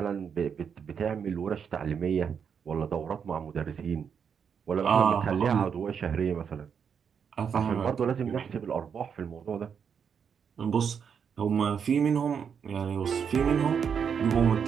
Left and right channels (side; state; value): left; quieter; 7.0 dB